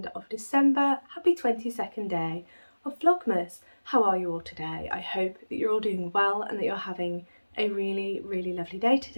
of December. Happy 22nd day of Vlogmas. How are you all today? I hope that you're all doing well and that you're having a really, really lovely day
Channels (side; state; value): both; inverted; correlation -1.00